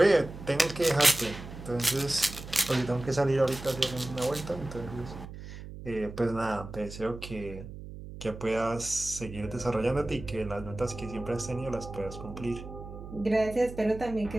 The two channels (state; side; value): noise; right; hum, 12 dB below the sound